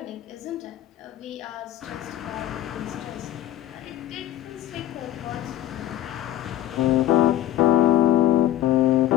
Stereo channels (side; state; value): right; quieter; 13.1 dB